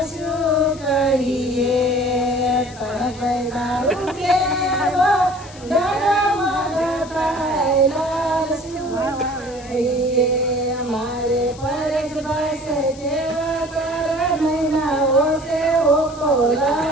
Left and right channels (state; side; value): noise; left; hiss, 20 dB below the sound